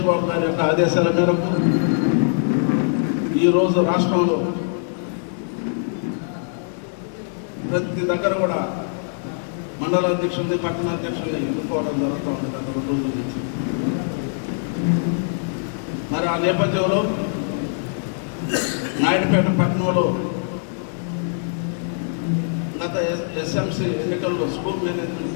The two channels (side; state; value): right; silent; digital silence